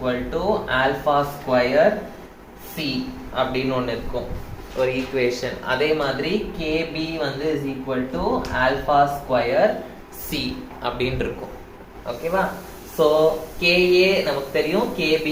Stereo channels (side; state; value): both; identical; correlation 1.00